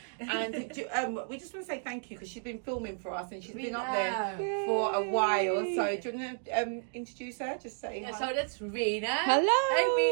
And we just want to say thank you because she's been filming for us and she's been up there for a while. So do you want to introduce her? Just say hi. So that's Rena. Hello. Hey,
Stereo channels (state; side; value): silent; left; digital silence